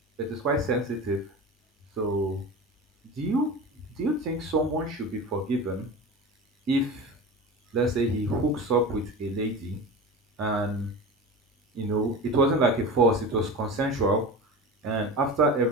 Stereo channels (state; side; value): normal; both; correlation 0.30